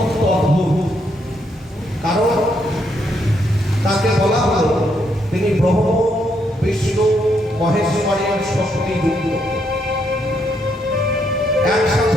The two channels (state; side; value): normal; both; correlation 0.75